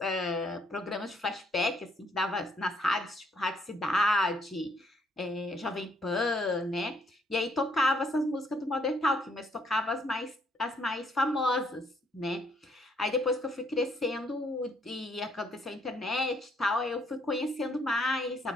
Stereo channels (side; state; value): both; normal; correlation 0.69